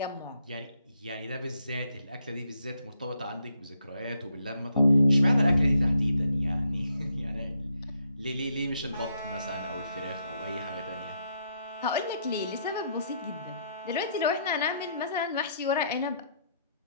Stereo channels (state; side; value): inverted; both; correlation -0.75